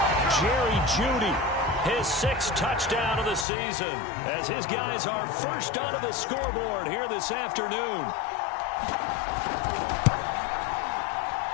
Jerry Jeudy, his 6th touchdown of the season, as his guys are first onto the scoreboard here this afternoon.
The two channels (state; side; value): drops out; right; at 3.5 s